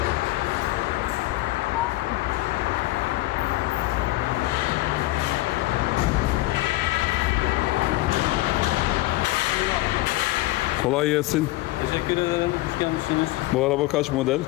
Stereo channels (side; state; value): right; quieter; 18.8 dB